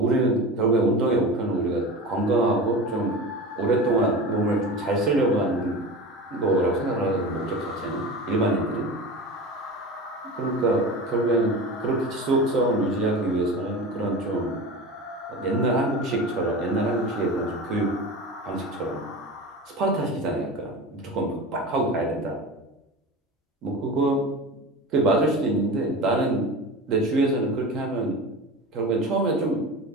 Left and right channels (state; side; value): normal; both; correlation 0.30